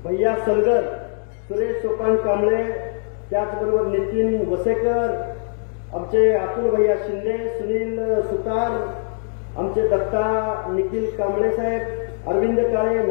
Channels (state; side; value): silent; right; digital silence